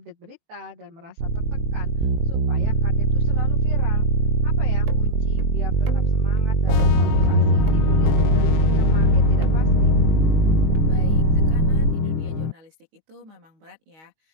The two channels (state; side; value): late; left; 19 ms